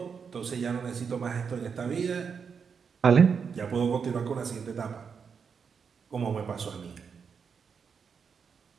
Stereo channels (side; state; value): left; quieter; 6.2 dB